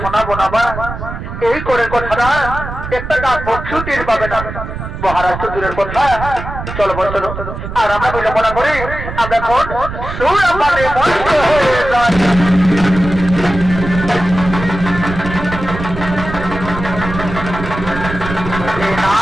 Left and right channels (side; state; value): right; noise; rumble, 8 dB below the sound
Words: না বা, এই করে কথাটা একটা গাছ ছুটির পাবে না, মহারাজ তো দূরের কথা। চলো বল চলো, আর আমরা বিলম্বনা করি, আমরা এখন সুরাপানে মস্ত হয়ে যাই।